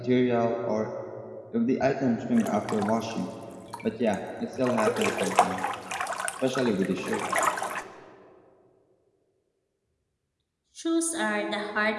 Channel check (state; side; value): identical; both; correlation 1.00